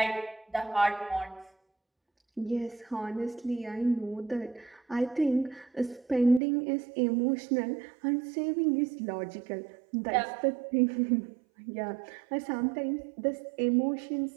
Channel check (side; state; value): left; drops out; at 6.4 s